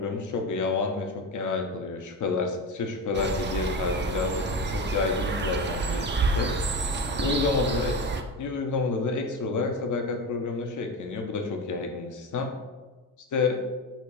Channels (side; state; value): both; normal; correlation 0.21